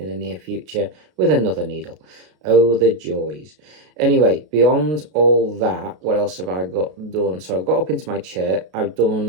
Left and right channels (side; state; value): left; late; 33 ms